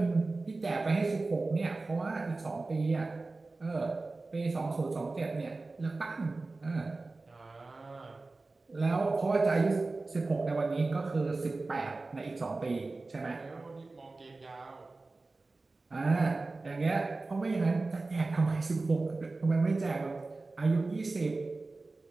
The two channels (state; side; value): quieter; left; 3.4 dB